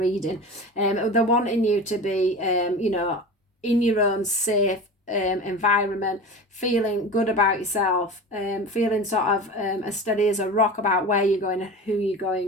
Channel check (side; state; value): both; normal; correlation 0.32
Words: They're wanting you to be in your own safe environment, feeling good about yourself, feeling sort of as steady as a rock about where you're going and who you're